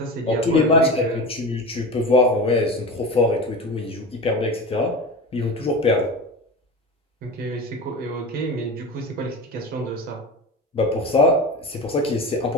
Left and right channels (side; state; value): both; normal; correlation 0.27